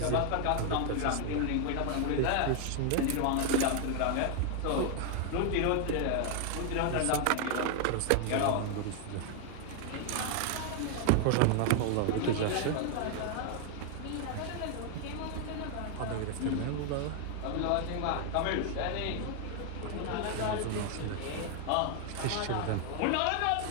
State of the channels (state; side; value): different; both; correlation 0.00